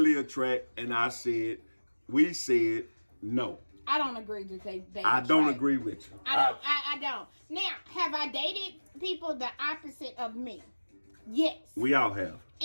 attract? And we said no. I don't agree that they I don't agree with you. I don't. Now, have I dated people the opposite of me? Yes. We all have.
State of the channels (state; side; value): inverted; both; correlation -1.00